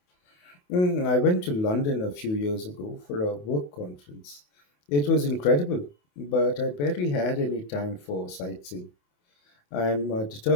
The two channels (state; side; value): late; right; 28 ms